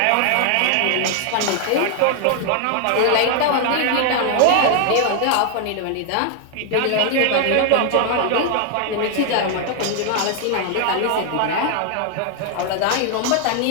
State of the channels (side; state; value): both; different; correlation 0.00